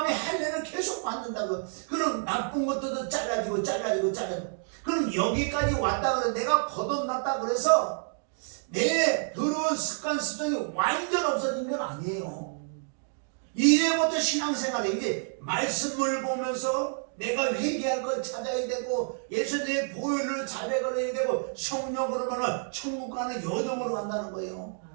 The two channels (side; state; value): left; silent; 59 dB below the other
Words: 할례를 계속 받는다고. 그럼 나쁜 것들도 잘라지고 그럼 여기까지 왔다 그래. 내가 거듭났다 그래서 내 더러운 습관 습성이 완전 없어진 건 아니에요. 이제부터 신앙생활에 이제 말씀을 보면서 내가 회개할 걸 찾아야 되고 예수님의 보혈을 자백을 해야 되고 성령으로 말하면 천국 가는 여정으로 간다는 거예요.